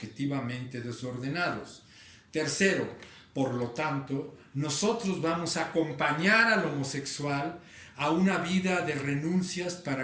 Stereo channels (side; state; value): both; identical; correlation 1.00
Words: desordenados. Tercero, por lo tanto, nosotros vamos a acompañar al homosexual a una vida de renuncias